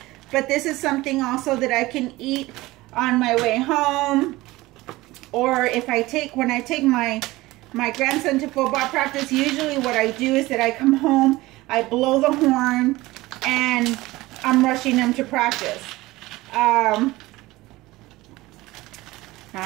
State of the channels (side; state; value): left; quieter; 19.3 dB